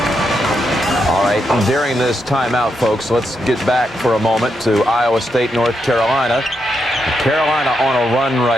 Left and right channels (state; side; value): normal; both; correlation 0.82